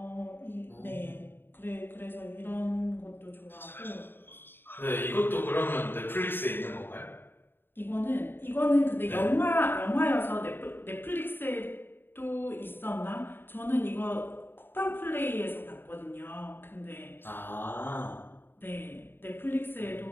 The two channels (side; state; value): right; late; 0.10 ms